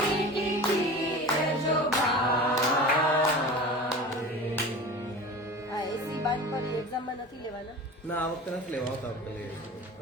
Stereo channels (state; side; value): normal; both; correlation 0.35